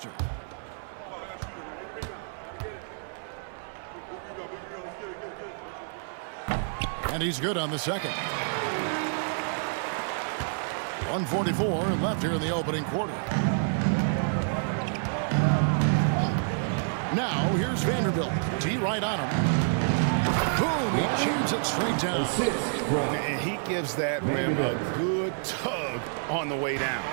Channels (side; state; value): left; silent; 59 dB below the other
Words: And he's good on the second. 1:44 left here in the opening quarter. Now here's Vanderbilt. T right on him. Boom! He jams it straight down. And he gives that rim a good tug on the way down.